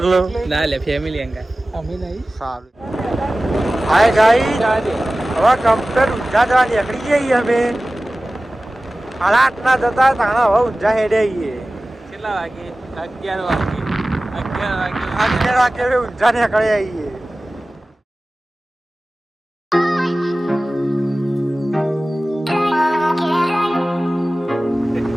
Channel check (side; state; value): both; normal; correlation 0.97